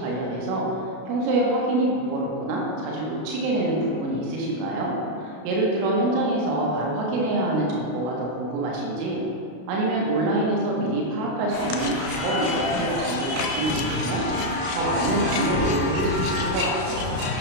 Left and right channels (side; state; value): left; late; 32 ms